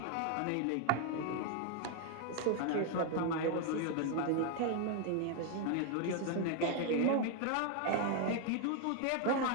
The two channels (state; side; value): different; both; correlation 0.00